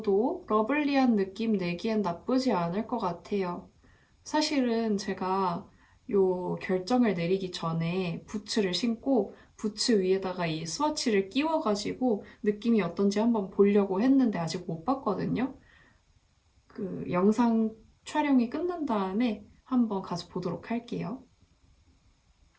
러블리한 느낌 내기엔 나쁘지 않을 것 같아요. 사실은 제가 요 결정을 내리기 전에 부츠를 신고 부츠 위에다가 이 스와치를 끼워가지고 느낌이 어떤지 한번 보려고 했는데 아직 못 봤거든요. 그 영상 촬영이 끝난 다음에 한번 가서 보도록 할게요.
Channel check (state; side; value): identical; both; correlation 1.00